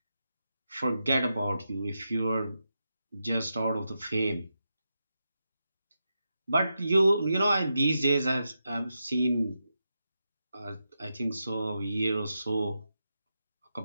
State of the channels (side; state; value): both; inverted; correlation -0.87